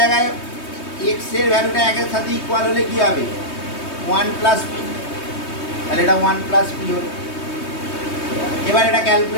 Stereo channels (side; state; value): right; late; 3.2 ms